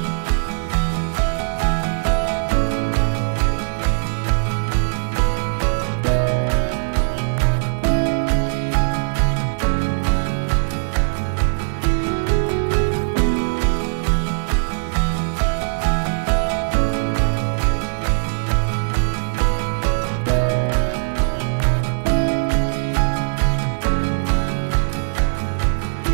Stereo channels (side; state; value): left; silent; digital silence